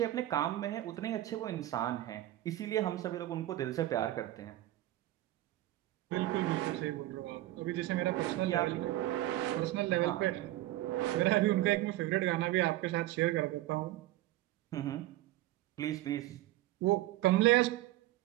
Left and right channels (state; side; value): quieter; left; 15.7 dB